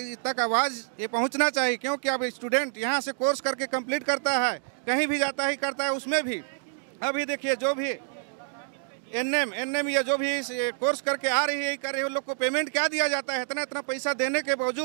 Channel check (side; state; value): left; silent; digital silence